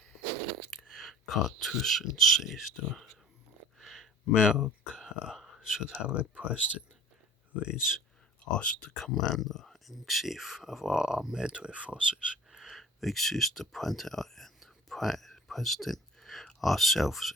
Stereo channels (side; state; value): both; normal; correlation 0.43